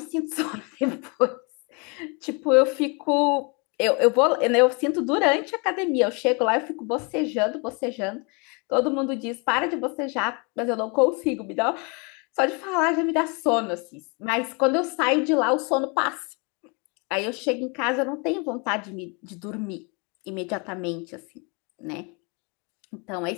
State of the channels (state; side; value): quieter; right; 32.1 dB